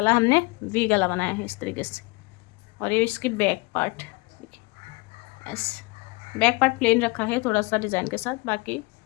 हमने वी गला बनाया है इस तरीके से। और ये इसकी बैक पार्ट देखिए, ऐसे बैक पार्ट प्लेन रखा है थोड़ा सा डिज़ाइन के साथ, बाकी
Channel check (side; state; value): right; quieter; 26.3 dB